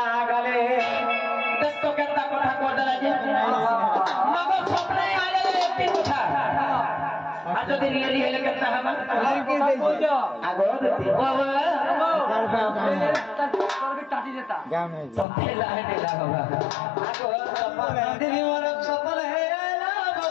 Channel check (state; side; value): drops out; right; at 15.2 s